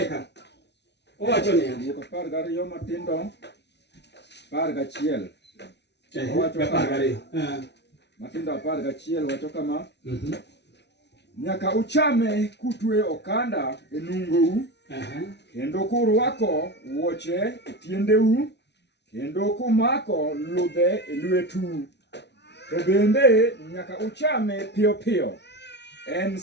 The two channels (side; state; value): right; late; 0.50 ms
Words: ka. Owacho niya, Wuok 12 matindo 11. owacho 12. Matindo 11 wacho kama. Nyaka uchame kutwe okanda e nungou. Kendo kurwako wuoche e tiendeu. Kendo kumako ludhe e lwetu. To bende nyaka uchame piyo piyo. En